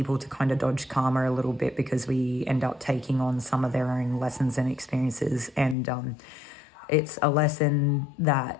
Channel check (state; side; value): drops out; right; at 5.8 s